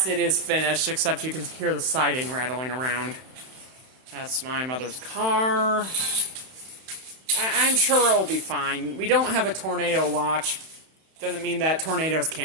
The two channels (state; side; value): late; left; 31 ms